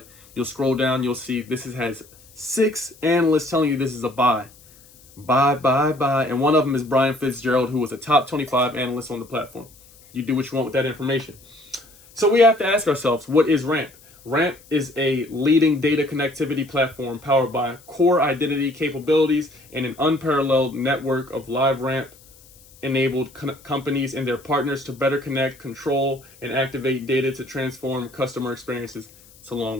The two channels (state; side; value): noise; left; hiss, 25 dB below the sound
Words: You'll scroll down, you'll see this has 6 analysts telling you this is a buy. Buy, buy, buy. And one of them is Brian Fitzgerald, who was a top 25 analyst on the platform. You do what you want with that information. So we have to ask ourselves, what is Ramp? Ramp is a leading data connectivity platform powered by core identity capabilities and an unparalleled network of live Ramp-enabled companies and their partners to better connect, control, and activate data to transform customer experiences. It's a long